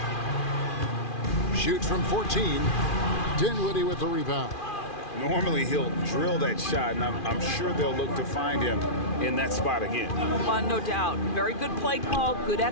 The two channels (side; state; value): right; late; 2.4 ms